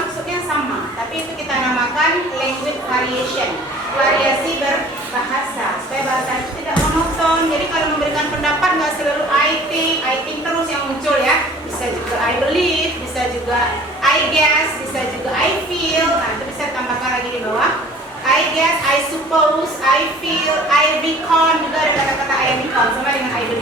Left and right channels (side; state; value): both; normal; correlation 0.49